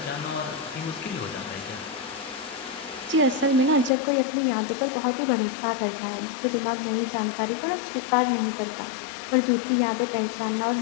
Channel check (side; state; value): right; drops out; at 3.9 s